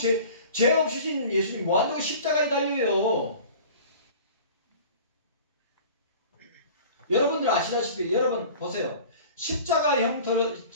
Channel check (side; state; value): both; inverted; correlation -0.43